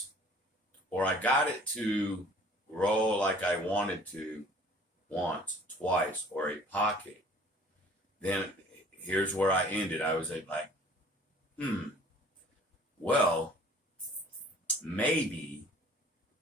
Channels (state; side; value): normal; both; correlation 0.51